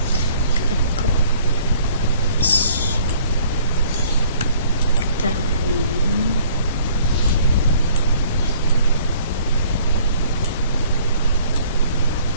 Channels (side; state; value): both; inverted; correlation -0.56